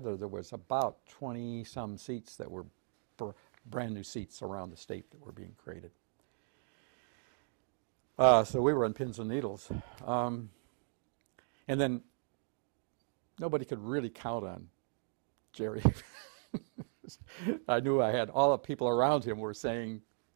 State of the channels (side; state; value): left; silent; digital silence